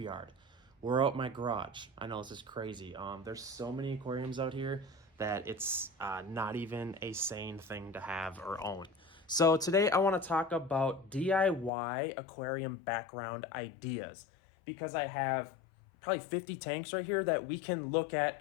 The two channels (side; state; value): right; drops out; at 11.7 s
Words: We're out my garage. I know this is crazy. There's so many aquariums out here that it's not even a sane thing to have or own. So today I want to talk about DIY aquarium background ideas because I have probably 50 tanks right here that we can look at